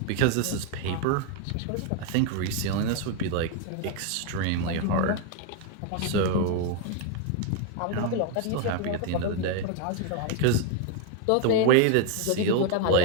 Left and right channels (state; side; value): different; both; correlation 0.01